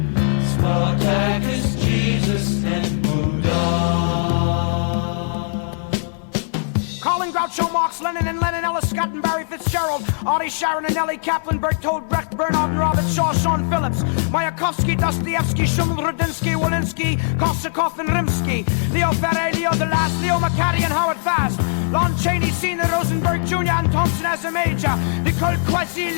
Groucho Marx, Lenin and Lenin, Ellis, Scott and Barry Fitz, Fitzgerald, Artie Sharon and Ellie Kaplan, Bertold Brecht, Bernard and Robert Shaw, Sean Phillips, Mayakovsky, Dostoevsky, Schumann, Rudinsky, Walensky, Korsakov and Rimsky, Leo Ferre, Leo DeLast, Leo McCarty and Howard Fast, Lon Chaney, Senior, Rosenberg Jr. and Thompson as a major, Nicole Quasi,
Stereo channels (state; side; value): silent; right; 66 dB below the other